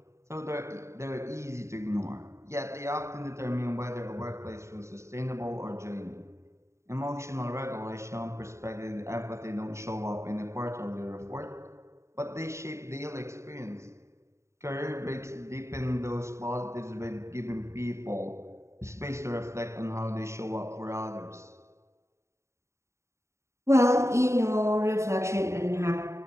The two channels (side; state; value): left; late; 0.14 ms